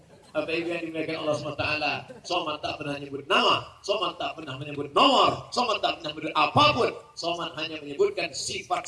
Apa itu yang dimuliakan Allah SWT? Somad tak pernah menyebut nama, Somad tak pernah menyebut nomor, Somad tak pernah menyebut apapun. Somad hanya menyebutkan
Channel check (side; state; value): both; identical; correlation 1.00